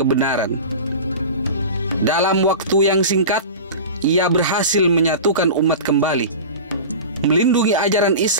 Dalam waktu yang singkat, ia berhasil menyatukan umat kembali, melindungi ajaran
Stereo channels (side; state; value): both; inverted; correlation -0.31